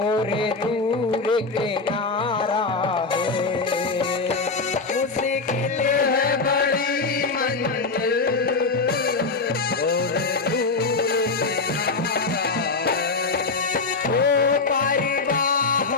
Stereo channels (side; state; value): right; quieter; 4.2 dB